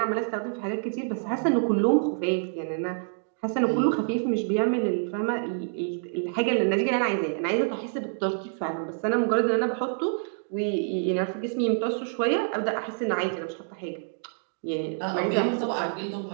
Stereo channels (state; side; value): silent; left; digital silence